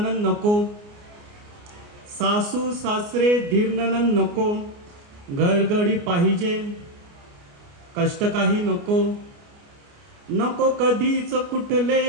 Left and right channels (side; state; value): left; late; 29 ms